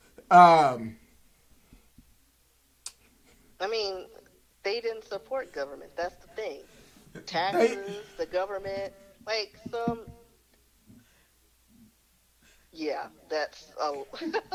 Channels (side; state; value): both; identical; correlation 1.00